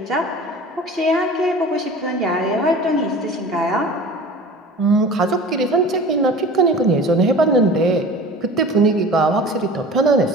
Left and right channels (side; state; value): both; normal; correlation 0.39